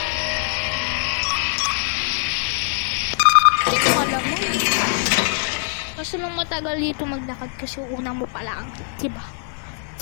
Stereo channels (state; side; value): silent; right; 64 dB below the other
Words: Kasi nung matagal dito maglakad kasi una mo pa lang. Diba?